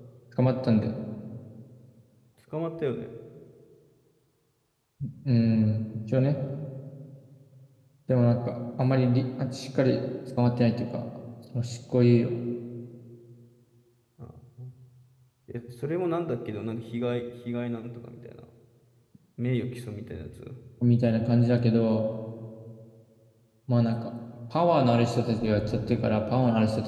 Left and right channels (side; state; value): both; identical; correlation 1.00